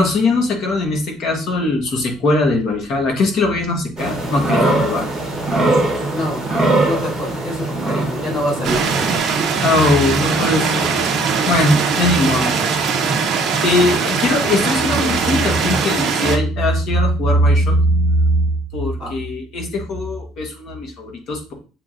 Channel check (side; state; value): both; normal; correlation 0.60